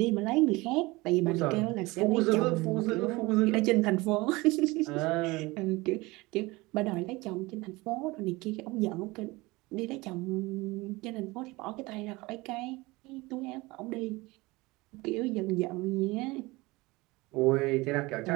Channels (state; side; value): quieter; left; 22.3 dB